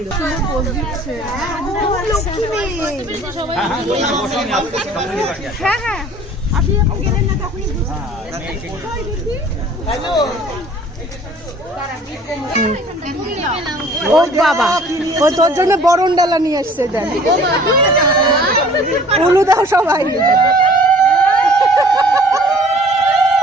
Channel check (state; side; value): normal; both; correlation 0.51